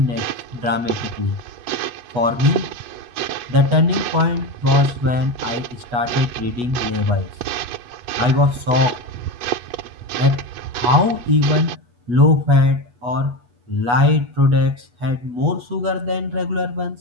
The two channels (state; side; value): late; left; 8.2 ms